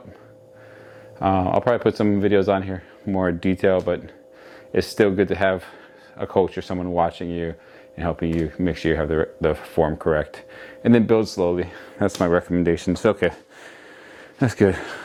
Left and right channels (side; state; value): both; identical; correlation 1.00